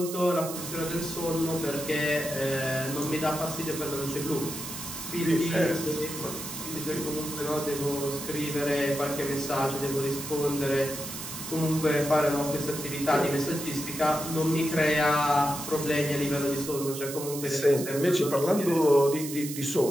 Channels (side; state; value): right; noise; hiss, 9 dB below the sound